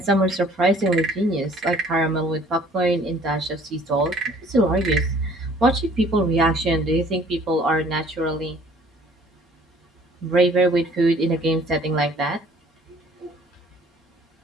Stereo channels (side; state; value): both; normal; correlation 0.55